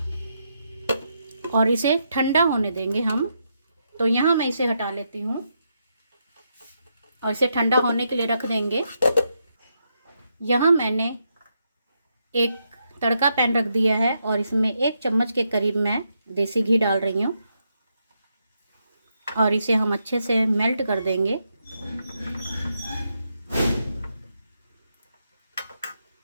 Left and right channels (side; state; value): both; inverted; correlation -0.81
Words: और इसे ठंडा होने देंगे हम। तो यहाँ मैं इसे हटा लेती हूँ और इसे ठंडा होने के लिए रख देंगे। यहाँ मैंने एक तड़का पैन रख दिया है और इसमें 1 चम्मच के करीब मैं देसी घी डाल रही हूँ, और इसे हम अच्छे से मेल्ट कर देंगे।